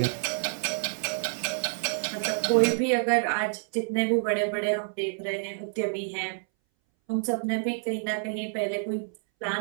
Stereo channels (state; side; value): silent; left; 59 dB below the other